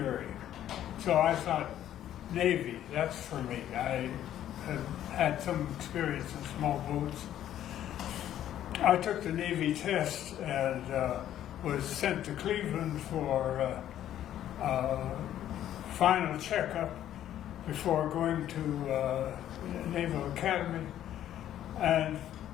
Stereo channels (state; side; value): quieter; right; 11.6 dB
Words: so I thought Navy, that's for me. I had some experience in small boats. I took the Navy test and was sent to Cleveland for final checkup before going to Naval Academy. And